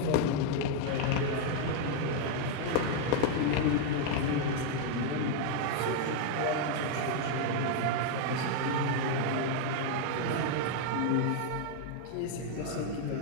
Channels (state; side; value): different; both; correlation 0.00